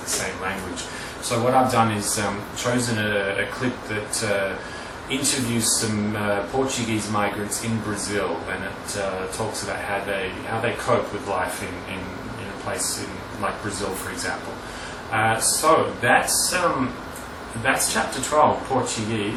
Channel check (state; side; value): identical; both; correlation 1.00